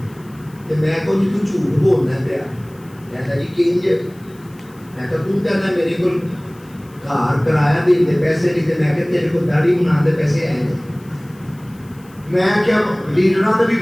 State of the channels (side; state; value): left; noise; hiss, 28 dB below the sound